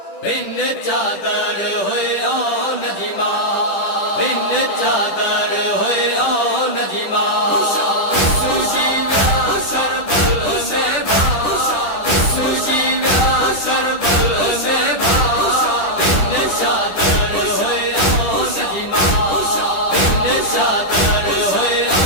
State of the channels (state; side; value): late; right; 10 ms